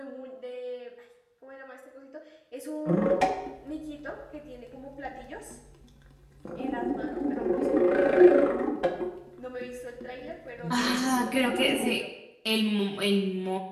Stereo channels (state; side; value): identical; both; correlation 1.00